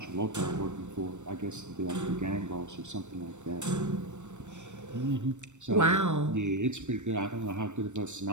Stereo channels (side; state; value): left; late; 0.84 ms